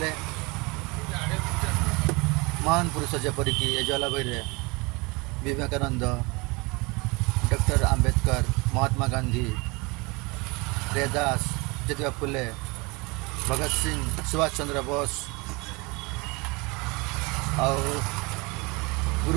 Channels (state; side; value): quieter; left; 26.9 dB